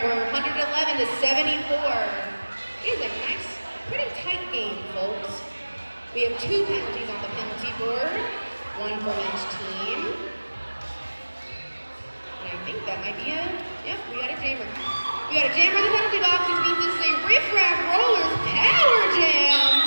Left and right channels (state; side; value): inverted; both; correlation -1.00